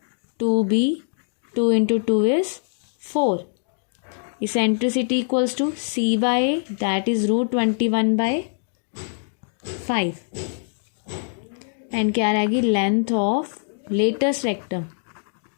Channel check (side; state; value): right; silent; digital silence